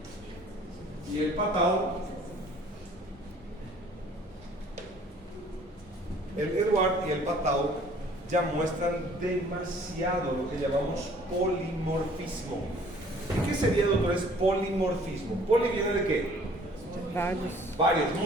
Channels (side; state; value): both; normal; correlation 0.55